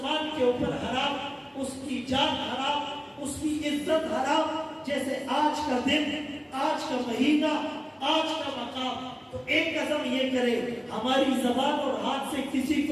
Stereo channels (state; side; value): identical; both; correlation 1.00